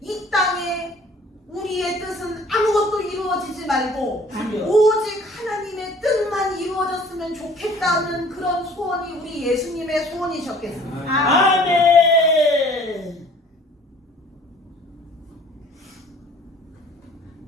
땅에 우리의 뜻은 아무것도 이루어지지 말고 주여. 오직 하나님의 뜻만 이루어졌으면 좋겠다는 그런 소원이 우리 예수님의 소원이셨겠습니다. 아멘.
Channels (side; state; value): both; normal; correlation 0.52